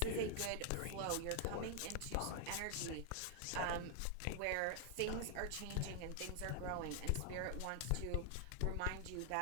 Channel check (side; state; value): both; different; correlation 0.00